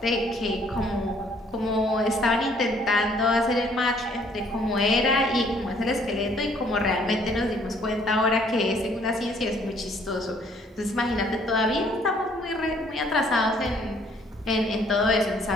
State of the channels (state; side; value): normal; both; correlation 0.62